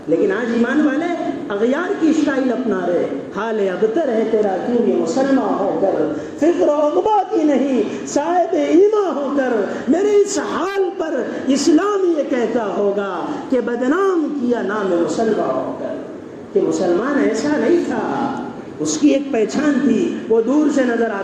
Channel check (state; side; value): identical; both; correlation 1.00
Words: لیکن آج ایمان والے اغیار کی اسٹائل اپنا رہے، حال ابتر ہے تیرا کیوں یہ مسلمان ہو کر، فکر و عقبہ کی نہیں صاحب ایمان ہو کر، میرے اس حال پر اسلام یہ کہتا ہوگا کہ بدنام کیا نام مسلمان ہو کر، کہ مسلمان ایسا نہیں تھا، اس کی ایک پہچان تھی، وہ دور سے نظر